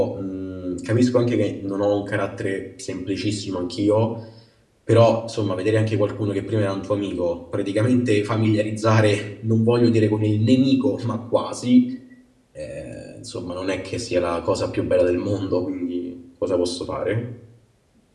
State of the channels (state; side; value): identical; both; correlation 1.00